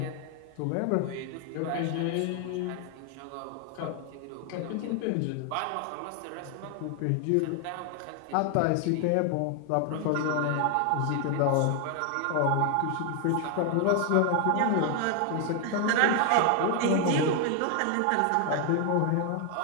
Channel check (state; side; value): different; both; correlation 0.00